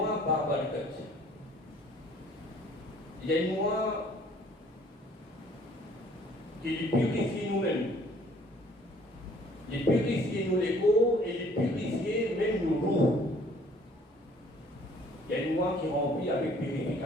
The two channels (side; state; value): both; normal; correlation 0.57